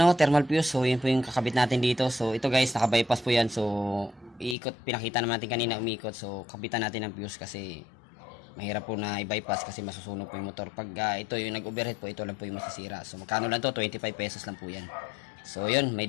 thermal fuse. So, yun po yung kakabit natin dito. So, ito guys, naka-bypass po yan. So, iikot. Pinakita naman natin kanina umikot. So, kabitan natin ng fuse kasi mahirap po na i-bypass kasi masusunog po yung motor. Pag ito yung nag-overheat po, ito lang po yung masisira. So, magkano lang to? 25 pesos lang po yan. So, yun.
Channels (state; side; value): drops out; right; at 4.5 s